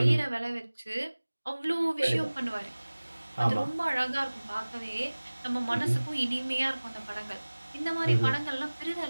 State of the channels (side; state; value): both; inverted; correlation -1.00